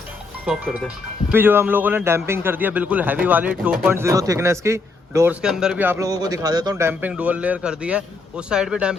स्टॉप कर दे। अभी जो हम लोगों ने डैम्पिंग कर दिया बिल्कुल हैवी वाली 2.0 थिकनेस की। डोर्स के अंदर भी आप लोगों को दिखा देता हूँ, डैम्पिंग डुअल लेयर कर दी है। उस साइड पे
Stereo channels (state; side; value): quieter; right; 3.8 dB